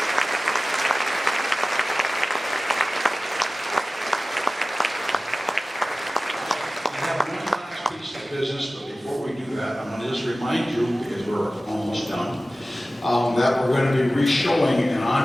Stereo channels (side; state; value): both; normal; correlation 0.96